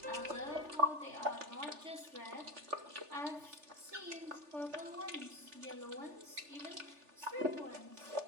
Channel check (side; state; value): left; late; 3.4 ms